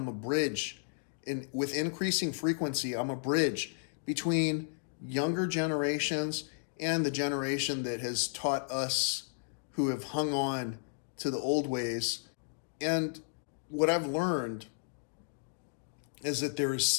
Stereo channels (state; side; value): silent; right; digital silence